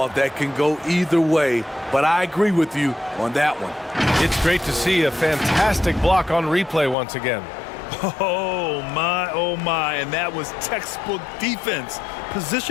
that can go either way, but I agree with you on that one. It's great to see a fantastic block on replay once again. Oh my, and that was textbook defense,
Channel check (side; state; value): right; drops out; at 7.0 s